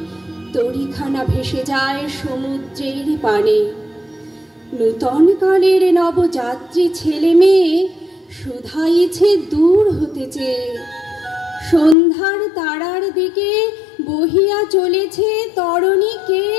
তরিখানা ভেসে যায় সমুদ্রের পানে। নূতন কালের নবযাত্রী ছেলে মেয়ে শুধাইছে দূর হতে চেয়ে। সন্ধ্যার তারার দিকে বহিয়া চলেছে তরণী কে?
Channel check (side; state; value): right; drops out; at 12.0 s